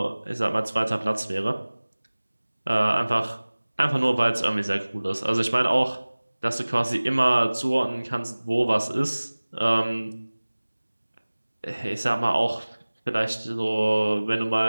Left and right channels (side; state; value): both; inverted; correlation -1.00